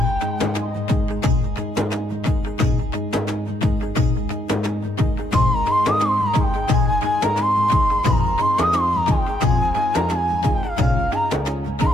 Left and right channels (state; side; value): normal; both; correlation 0.75